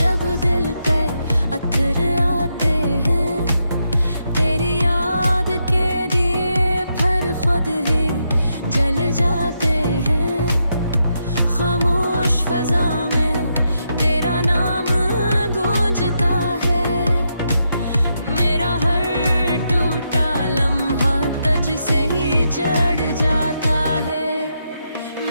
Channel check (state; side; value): inverted; both; correlation -0.82